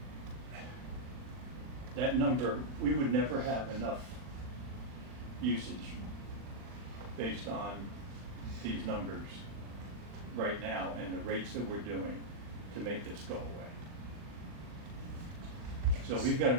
That number, we would never have enough usage based on these numbers right now and the rates that we're doing to make this go away. So we've got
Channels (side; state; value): left; late; 40 ms